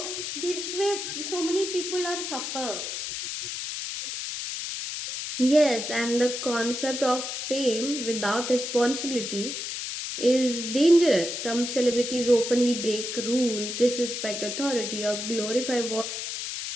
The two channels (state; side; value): noise; left; hiss, 5 dB below the sound